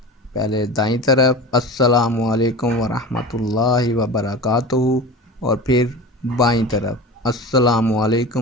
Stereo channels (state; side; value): normal; both; correlation 0.32